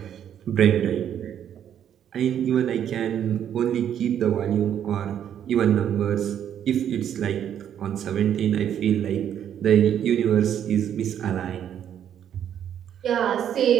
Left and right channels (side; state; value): left; quieter; 9.6 dB